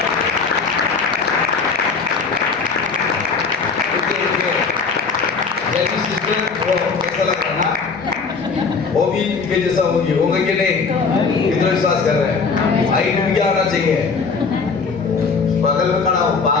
जेनी सिस्टर वो कैसा लग रहा ना, वो भी इनके जैसा होगी, होंगे कि नहीं? कितना विश्वास कर रहे हैं? हाइट भी क्या होना चाहिए? बगल में खड़ा हो,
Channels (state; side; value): quieter; right; 4.9 dB